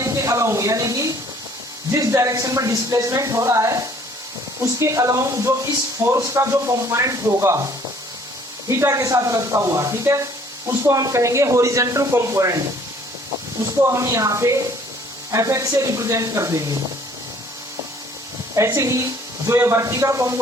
के अलोंग यानी कि जिस डायरेक्शन में डिस्प्लेसमेंट हो रहा है उसके अलोंग जो इस फोर्स का जो कंपोनेंट होगा थीटा के साथ लगता हुआ, ठीक है, उसको हम कहेंगे हॉरिजॉन्टल कंपोनेंट। उसको हम यहाँ पे Fx से रिप्रेजेंट कर देंगे। ऐसे ही जो ये वर्टिकल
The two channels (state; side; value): normal; both; correlation 0.57